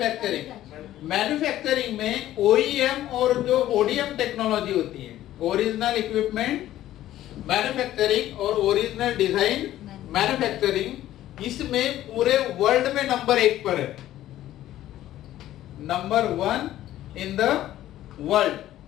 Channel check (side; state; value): right; quieter; 13.6 dB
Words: मैन्युफैक्चरिंग में OEM और जो ODM टेक्नोलॉजी होती है, ओरिजिनल इक्विपमेंट मैन्युफैक्चरिंग और ओरिजिनल डिजाइन मैन्युफैक्चरिंग, इसमें पूरे वर्ल्ड में नंबर 1 पर है। Number 1 in the world.